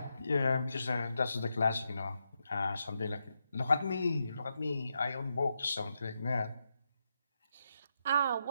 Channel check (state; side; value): inverted; both; correlation -0.85